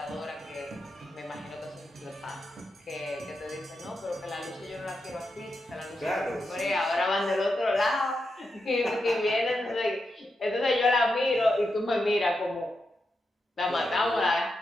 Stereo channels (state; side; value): normal; both; correlation 0.86